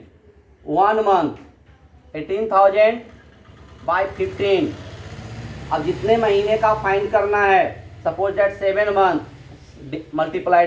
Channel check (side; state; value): both; identical; correlation 1.00